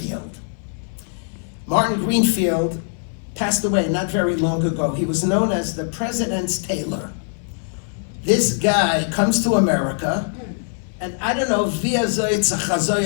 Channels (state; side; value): silent; right; digital silence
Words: Martin Greenfield passed away not very long ago. He was known as the President's Tailor. This guy comes to America, and I don't know,